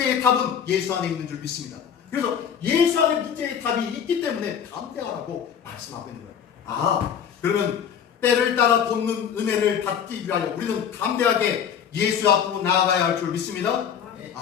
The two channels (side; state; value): right; quieter; 8.1 dB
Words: 답은 예수 안에 있는 줄 믿습니다. 그래서 예수 안에 문제의 답이 있기 때문에 담대하라고 말씀하고 있는 거예요. 그러면 때를 따라 돕는 은혜를 받기 위하여 우리는 담대하게 예수 앞으로 나아가야 할 줄 믿습니다.